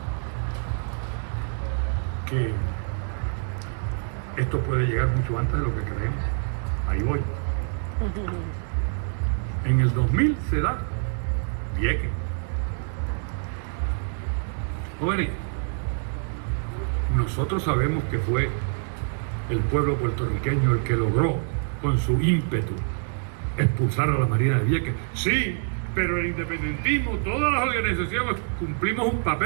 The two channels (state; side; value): silent; left; 61 dB below the other